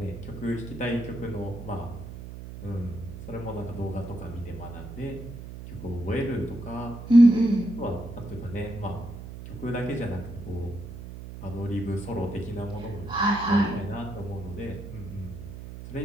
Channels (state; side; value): noise; right; hum, 11 dB below the sound